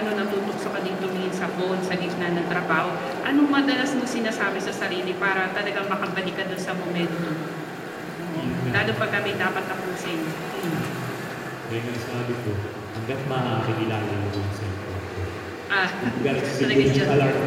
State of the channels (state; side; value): identical; both; correlation 1.00